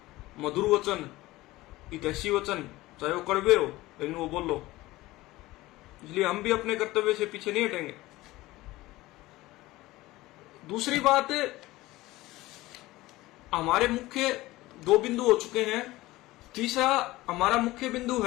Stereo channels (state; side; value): quieter; right; 18.4 dB